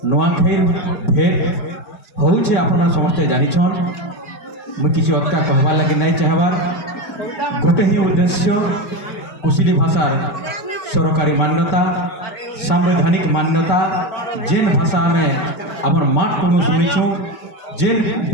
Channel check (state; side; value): late; right; 5.2 ms